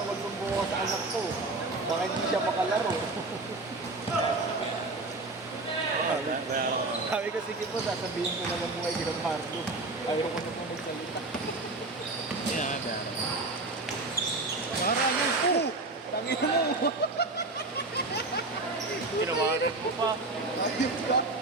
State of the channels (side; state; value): left; quieter; 3.2 dB